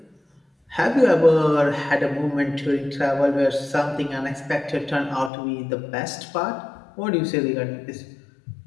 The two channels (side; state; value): right; drops out; at 5.3 s